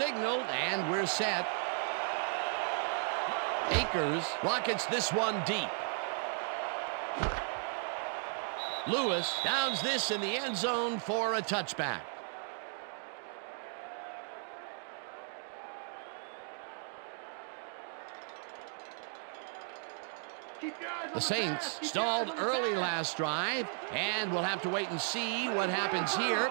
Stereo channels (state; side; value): silent; left; 54 dB below the other